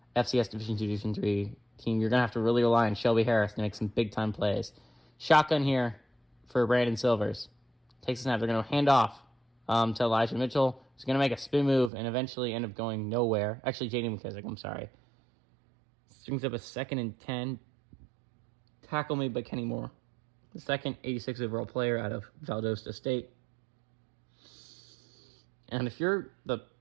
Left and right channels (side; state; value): left; drops out; at 11.9 s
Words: FCS Division II, Division III team. You're going to have to really rely on Shelby Harris to make some big-time plays. Shotgun here for Brandon Silvers. Takes a snap. They're going to hand off to Elijah Mitchell. He's going to make a spin move and eventually end up going nowhere. Actually, J.D. McKissick, I'm sorry. Brings up a 2nd and 10. Tackle made by Kenny Moore, the second 86 overall player out of Valdosta State. And if you're the